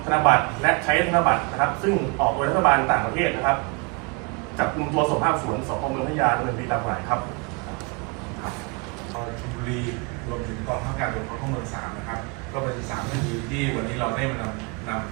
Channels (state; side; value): quieter; left; 30.5 dB